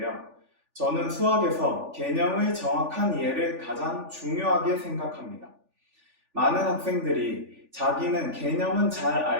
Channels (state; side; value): late; left; 3.4 ms